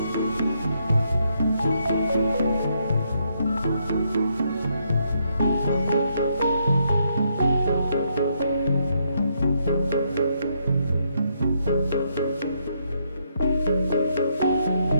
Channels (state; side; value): inverted; both; correlation -0.76